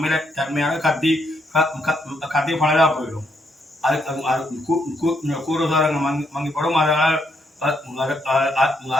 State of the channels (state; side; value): normal; both; correlation 0.76